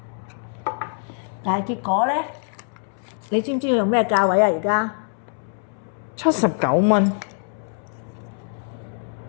但係結果咧，你知唔知要用咩價位啊？而家79蚊。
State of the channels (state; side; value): silent; right; 62 dB below the other